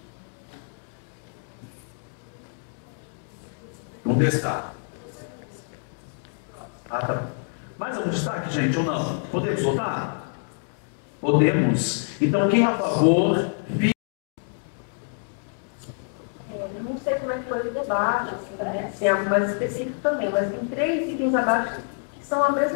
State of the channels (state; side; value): silent; right; 61 dB below the other